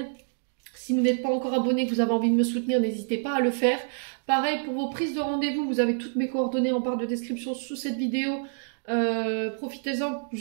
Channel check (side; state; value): left; silent; digital silence